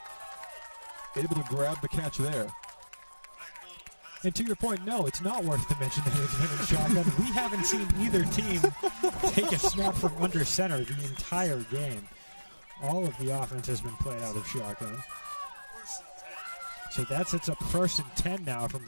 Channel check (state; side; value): inverted; both; correlation -1.00